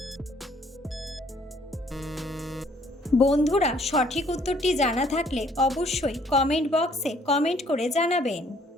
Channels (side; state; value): both; normal; correlation 0.62